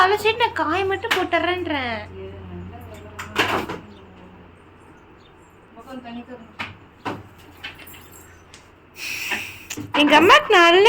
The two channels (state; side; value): identical; both; correlation 1.00